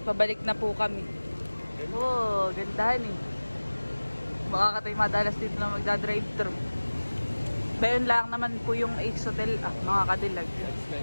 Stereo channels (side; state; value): both; inverted; correlation -1.00